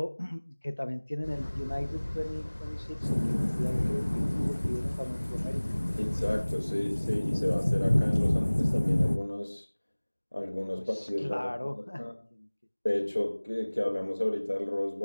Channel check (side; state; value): both; inverted; correlation -1.00